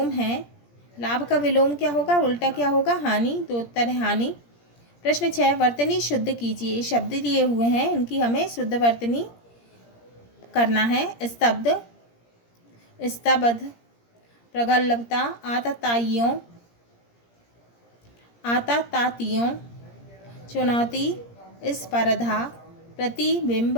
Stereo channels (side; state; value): right; late; 17 ms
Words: है। लाभ का विलोम क्या होगा? उल्टा क्या होगा? हानि। तो उत्तर है हानि। प्रश्न 6, वर्तनी शुद्ध कीजिए। शब्द दिए हुए हैं, इनकी हमें शुद्ध वर्तनी करना है। स्तब्ध, स्तब्ध, प्रगल्भता, आतताइयों, चुनौती, स्पर्धा, प्रतिबिंब,